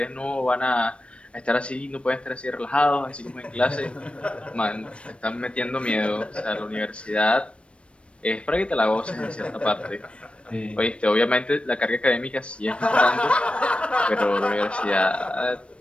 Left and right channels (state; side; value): late; right; 0.060 ms